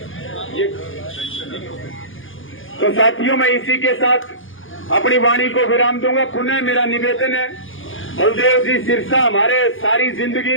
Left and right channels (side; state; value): right; late; 0.58 ms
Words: तो साथियों, मैं इसी के साथ अपनी वाणी को विराम दूंगा। पुनः मेरा निवेदन है, बलदेव जी सिरसा हमारे सारी जिंदगी